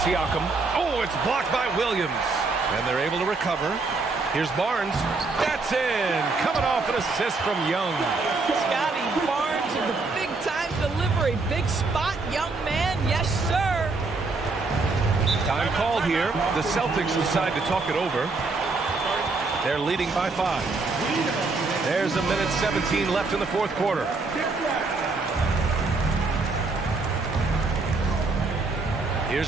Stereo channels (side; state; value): left; quieter; 3.8 dB